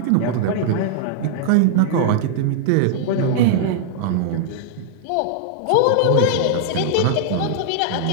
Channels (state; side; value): different; both; correlation -0.01